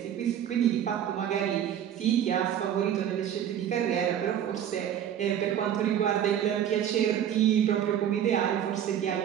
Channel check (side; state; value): left; quieter; 9.9 dB